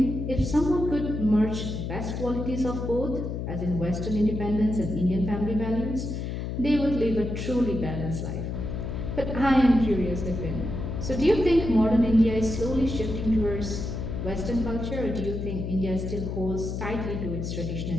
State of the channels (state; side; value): noise; left; hum, 4 dB below the sound